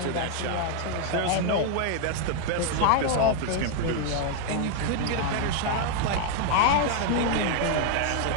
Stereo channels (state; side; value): different; both; correlation 0.01